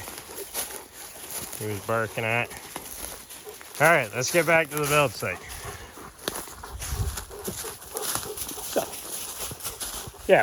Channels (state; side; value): identical; both; correlation 1.00